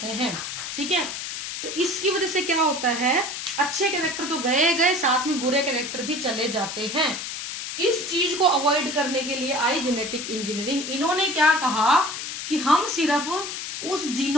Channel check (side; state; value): left; noise; hiss, 6 dB below the sound